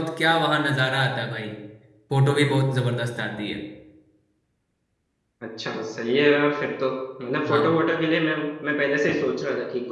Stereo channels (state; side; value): identical; both; correlation 1.00